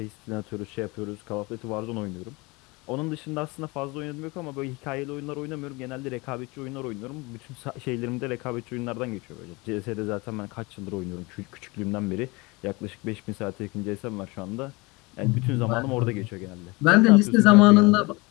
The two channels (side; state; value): right; quieter; 25.2 dB